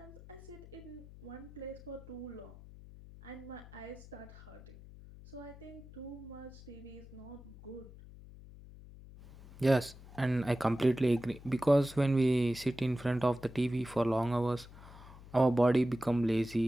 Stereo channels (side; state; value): left; noise; hum, 18 dB below the sound